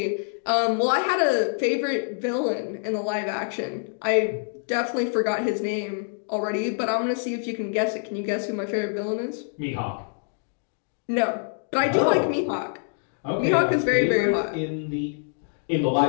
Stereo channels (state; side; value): silent; right; digital silence